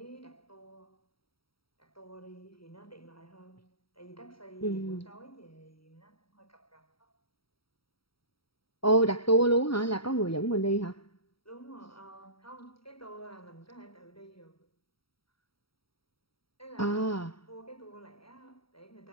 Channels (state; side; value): late; right; 0.75 ms